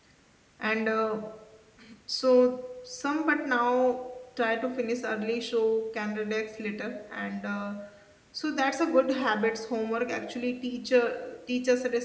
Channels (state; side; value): identical; both; correlation 1.00